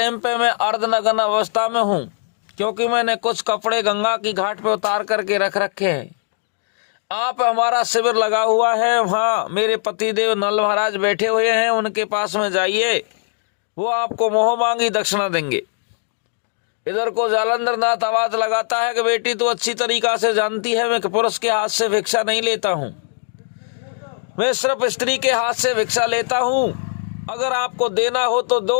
पे मैं अर्धनग्न अवस्था में हूँ, क्योंकि मैंने कुछ कपड़े गंगा की घाट पे उतार करके रख रखे हैं। आप, हमारा शिविर लगा हुआ है, वहाँ मेरे पतिदेव नल महाराज बैठे हुए हैं, उनके पास में जाइए, वो आपको मोह मांगी दक्षिणा देंगे। इधर को जालंधर नाथ आवाज लगाता है कि बेटी तू अच्छी तरीका से जानती है मैं पुरुष के हाथ से भिक्षा नहीं लेता हूँ, मैं सिर्फ स्त्री के हाथ से भिक्षा लेता हूँ। अगर आपको देना हो तो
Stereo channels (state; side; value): silent; right; 66 dB below the other